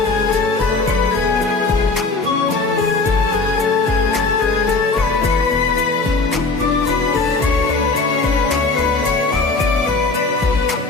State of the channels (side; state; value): right; quieter; 3.7 dB